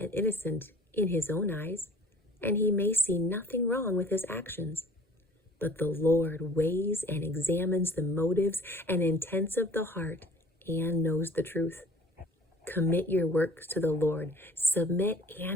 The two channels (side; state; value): both; normal; correlation 0.49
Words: innocent in his own eyes, and he may see nothing wrong with his actions. But the Lord weighs and examines the motives and intents of the heart and knows the truth. Commit your works to the Lord, submit